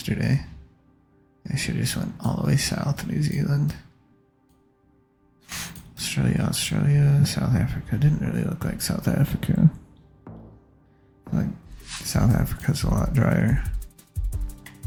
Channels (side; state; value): both; identical; correlation 1.00